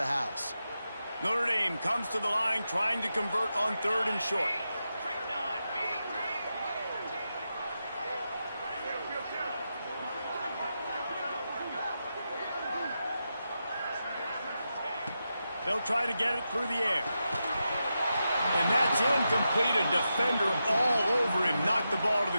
house. Notre Dame comes to the line trying to convert on 3rd and short. They'll try to get it through the air. And that's incomplete. A defender all over him. Knocked the ball to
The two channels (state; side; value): inverted; both; correlation -0.88